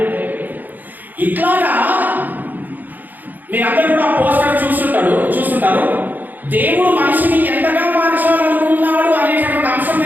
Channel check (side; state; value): left; late; 0.085 ms